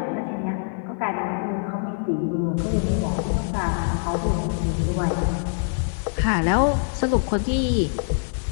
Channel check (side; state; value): right; silent; digital silence